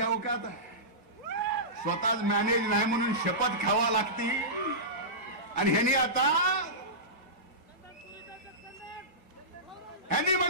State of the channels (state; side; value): normal; both; correlation -0.19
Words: आहे, स्वतःच मॅनेज नाही म्हणून शपथ खावा लागती. आणि ह्यांनी आता ह्यांनी